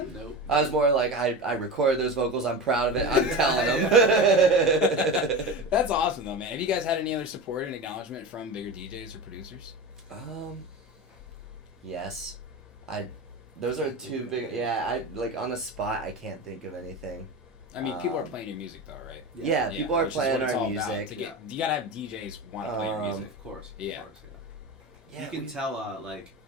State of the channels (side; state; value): both; normal; correlation 0.26